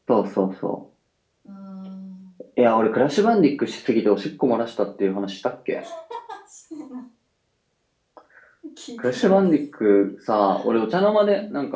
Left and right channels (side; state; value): both; identical; correlation 1.00